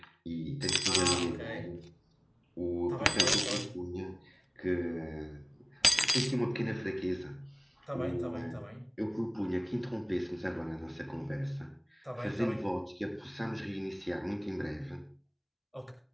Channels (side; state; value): both; identical; correlation 1.00